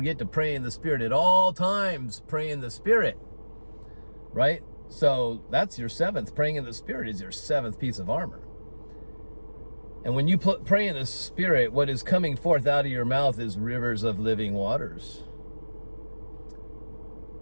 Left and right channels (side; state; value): both; inverted; correlation -1.00